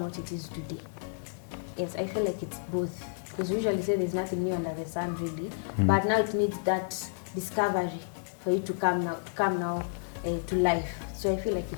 it is today. Yes, I feel like it's both. Because we usually say there's nothing new under the sun, really. But now it needs that discovery for it to come now to life. So I feel like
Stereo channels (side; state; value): right; silent; digital silence